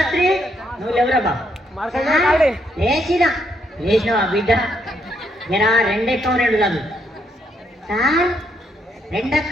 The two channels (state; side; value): normal; both; correlation 0.75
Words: నువ్వు ఎవరా బాబు? లేచినావా బిడ్డ? నేను రెండెక్కం రెండు చదువు సార్.